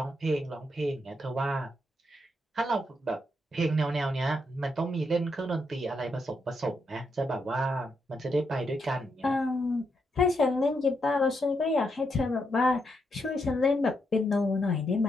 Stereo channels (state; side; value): normal; both; correlation 0.80